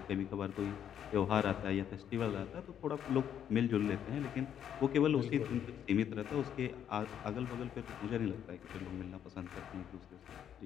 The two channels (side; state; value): right; quieter; 9.4 dB